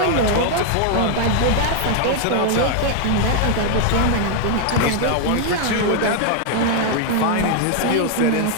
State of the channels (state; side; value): different; both; correlation 0.00